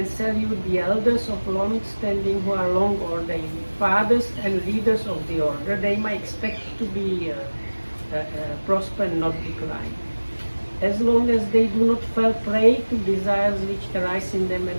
salute the elders of long standing who are long ordained, fathers and leaders of the order, they might expect to be prosper and not decline. As long as they do not fall prey to desires which arise in them and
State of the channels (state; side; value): inverted; both; correlation -1.00